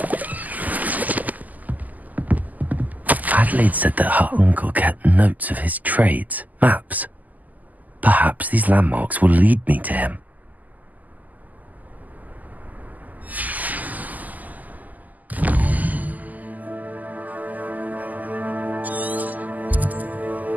Adelaide said that her uncle kept notes of his trades, maps. Perhaps these landmarks will lead me to him.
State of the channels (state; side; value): late; left; 0.080 ms